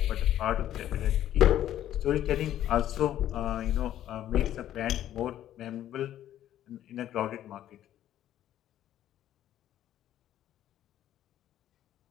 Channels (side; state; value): right; quieter; 12.0 dB